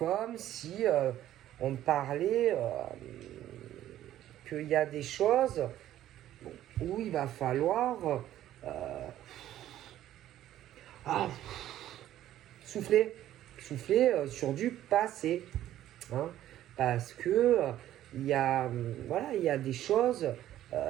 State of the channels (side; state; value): left; quieter; 12.7 dB